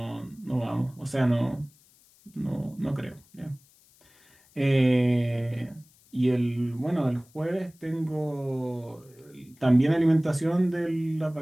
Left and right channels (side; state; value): left; noise; hiss, 30 dB below the sound